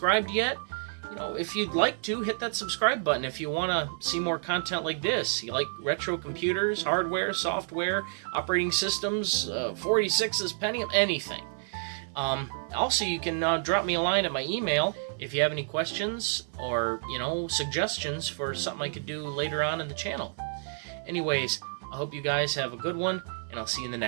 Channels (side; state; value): left; silent; 58 dB below the other